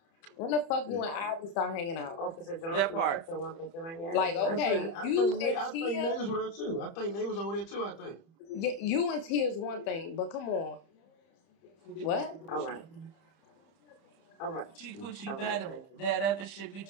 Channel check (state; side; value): late; right; 30 ms